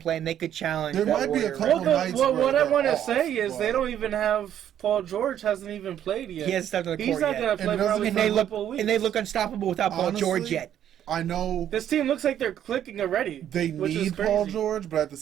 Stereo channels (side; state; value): left; quieter; 10.4 dB